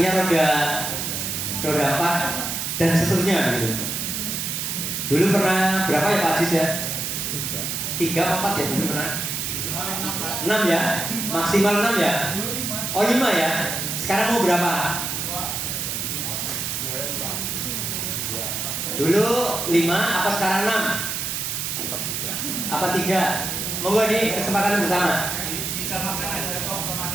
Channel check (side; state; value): right; noise; hiss, 2 dB below the sound